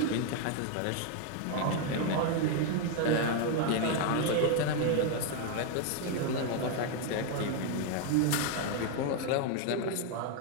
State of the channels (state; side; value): different; both; correlation 0.01